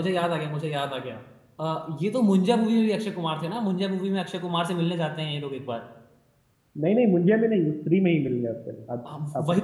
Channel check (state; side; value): identical; both; correlation 1.00